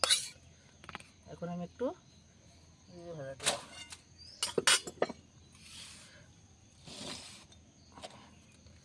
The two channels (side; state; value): both; identical; correlation 1.00